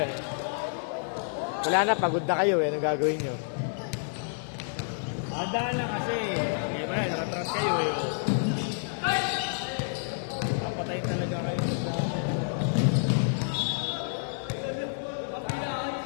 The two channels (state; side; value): silent; right; 59 dB below the other